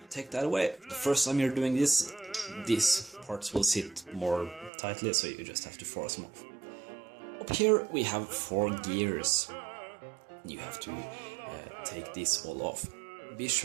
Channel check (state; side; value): drops out; left; at 4.7 s